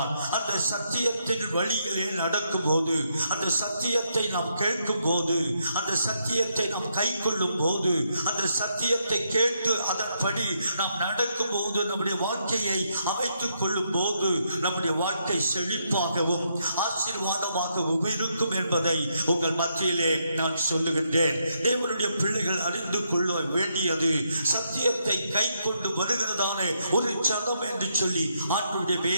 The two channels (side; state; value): both; inverted; correlation -0.78